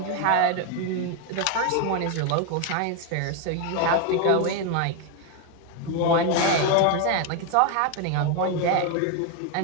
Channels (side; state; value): both; different; correlation 0.01